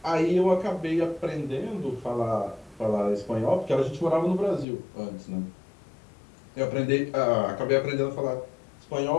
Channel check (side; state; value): right; drops out; at 4.7 s